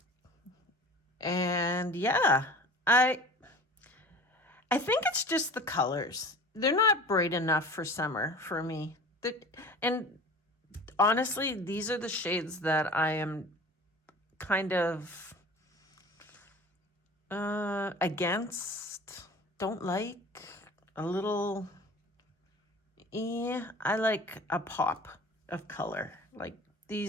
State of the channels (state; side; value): normal; both; correlation 0.41